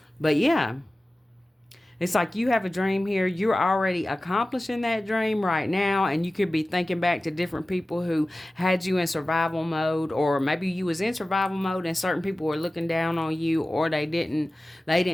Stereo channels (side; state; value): both; normal; correlation 0.96